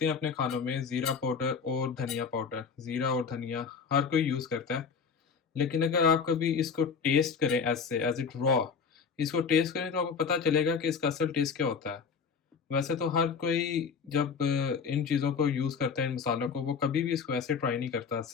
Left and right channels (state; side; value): quieter; right; 5.8 dB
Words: हैं अपने खानों में, ज़ीरा पाउडर और धनिया पाउडर। ज़ीरा और धनिया हर कोई यूज़ करता है। लेकिन अगर आप कभी इसको टेस्ट करें एज़ इट रॉ, इसको टेस्ट करें, तो आपको पता चलेगा कि इसका असल टेस्ट क्या होता है। वैसे तो हर कोई जब इन चीज़ों को यूज़ करता है, इन मसालों को, वो कभी भी इसको ऐसे ट्राई नहीं करता।